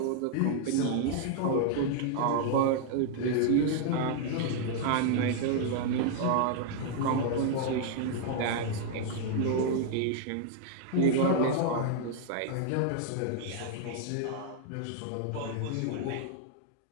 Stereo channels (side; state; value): both; different; correlation 0.00